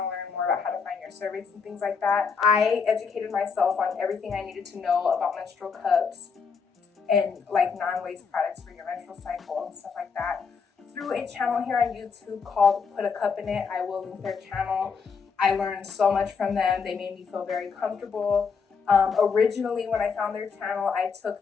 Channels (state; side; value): quieter; right; 5.6 dB